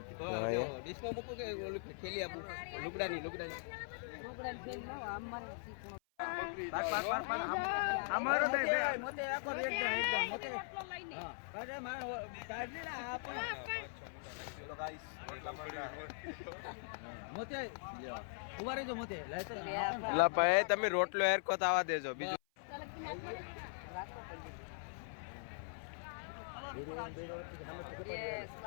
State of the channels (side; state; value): right; silent; 51 dB below the other